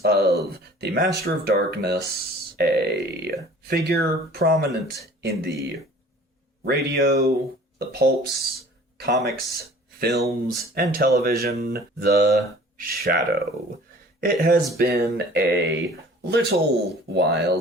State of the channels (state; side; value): normal; both; correlation 0.48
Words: of the Master of Darkness, a figure prominent in the radio, the pulps, comics, films, and television, the Shadow. It has been a little while,